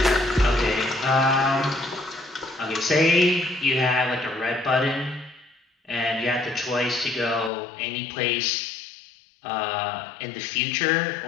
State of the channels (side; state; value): right; drops out; at 7.5 s